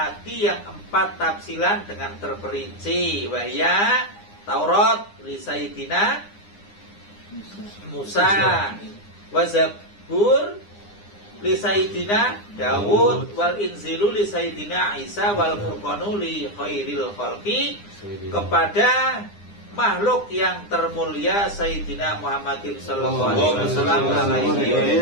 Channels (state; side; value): late; right; 9.8 ms